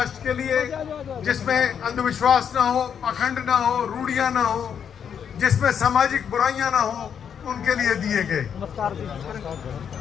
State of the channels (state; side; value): quieter; right; 7.8 dB